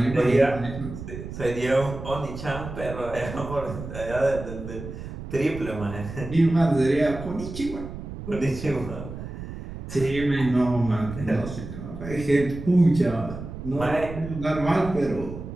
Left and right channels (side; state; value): right; noise; rumble, 10 dB below the sound